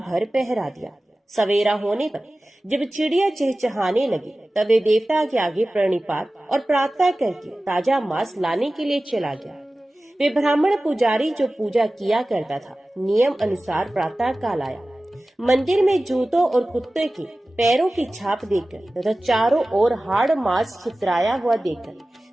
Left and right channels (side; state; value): both; normal; correlation 0.96